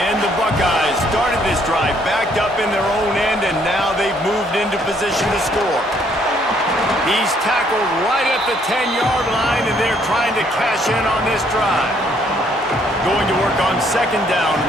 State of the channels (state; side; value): normal; both; correlation 0.67